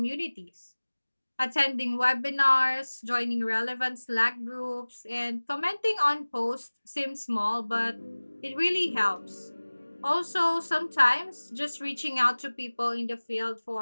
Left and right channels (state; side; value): inverted; both; correlation -1.00